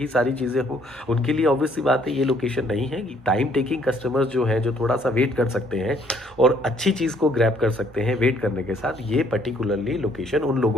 सारी चीज़ें हो, उनके लिए ऑब्वियस सी बात है ये लोकेशन नहीं है। कि टाइम टेकिंग कस्टमर्स जो हैं, जो थोड़ा सा वेट कर सकते हैं और अच्छी चीज़ को ग्रैब कर सकते हैं वेट करने के साथ, ये पर्टिकुलरली लोकेशन उन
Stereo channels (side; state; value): both; normal; correlation 0.64